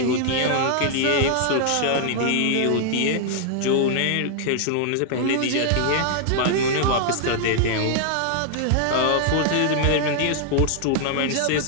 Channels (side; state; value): both; different; correlation -0.01